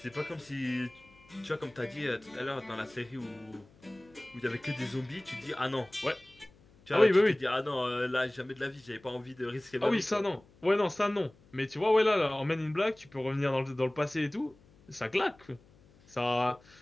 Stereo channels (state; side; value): noise; left; hum, 28 dB below the sound